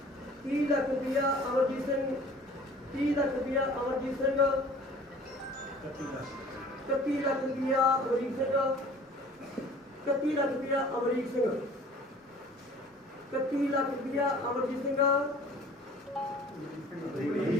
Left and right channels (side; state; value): both; normal; correlation 0.48